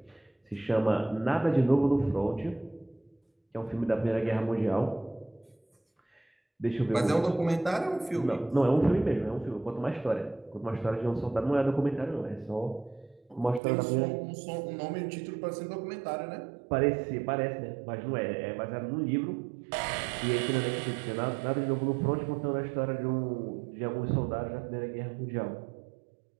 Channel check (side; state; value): left; drops out; at 13.6 s